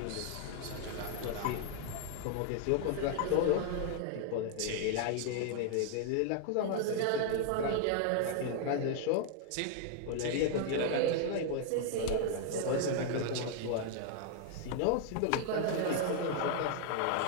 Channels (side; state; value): both; different; correlation 0.00